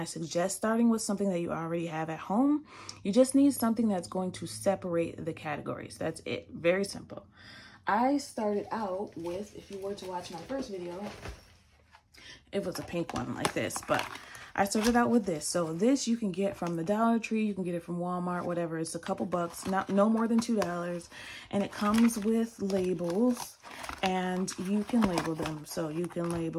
suggest starting with something that you already have at home. You just need something that's going to separate the categories. That's it. Very simple. I started out with, if you were to watch my first video, it was a pink one like this, but I started out with this. So this you can get from the Dollar Tree, you can get it from Walmart, whatever. It's a couple bucks, no more than $2. And it comes with labels, and you can label them. So you can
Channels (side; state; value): both; identical; correlation 1.00